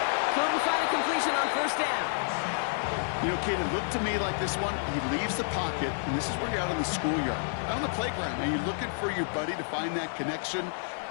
Couldn't find a completion on 1st down. You know, Kate, it looked to me like this one, he leaves the pocket, and this is where you're out on the schoolyard, out on the playground, and you're looking for your buddy to find that connection.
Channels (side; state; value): right; silent; 58 dB below the other